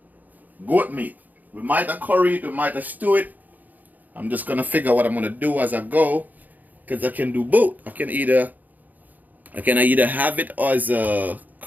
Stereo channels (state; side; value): late; left; 0.082 ms